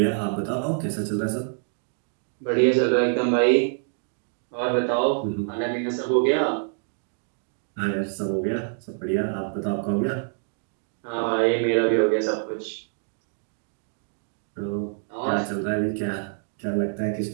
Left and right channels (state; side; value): silent; left; 57 dB below the other